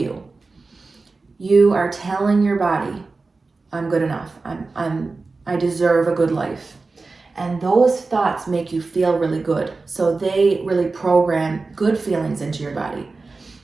you are telling your body, I'm good enough. I deserve a good life. And those thoughts make you feel really good. So they really program good feelings into your body,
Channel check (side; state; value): left; quieter; 3.8 dB